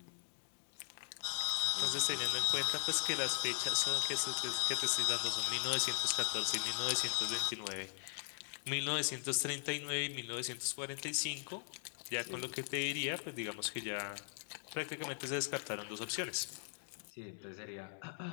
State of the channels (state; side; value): silent; right; digital silence